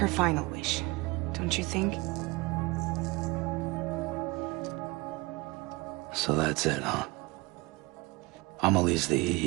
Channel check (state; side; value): quieter; left; 23.8 dB